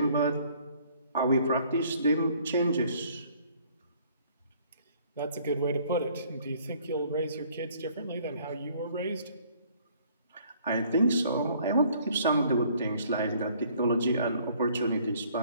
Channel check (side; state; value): both; inverted; correlation -0.60